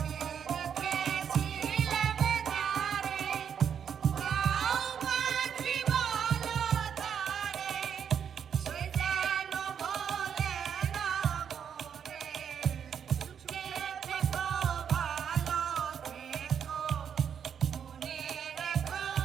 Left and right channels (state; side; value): quieter; left; 7.9 dB